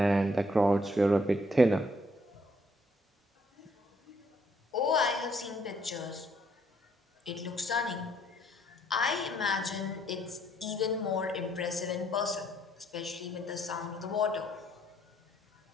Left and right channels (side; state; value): both; normal; correlation 0.68